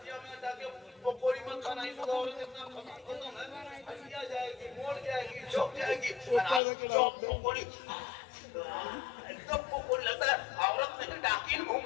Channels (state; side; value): drops out; right; at 6.6 s